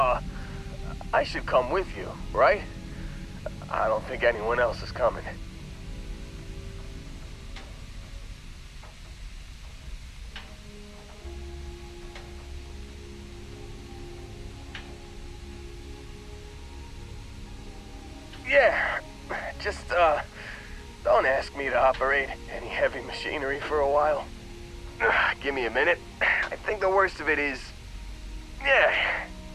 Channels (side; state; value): both; identical; correlation 1.00